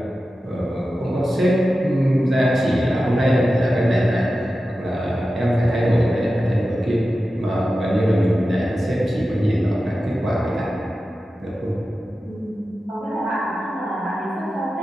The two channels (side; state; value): both; normal; correlation 0.93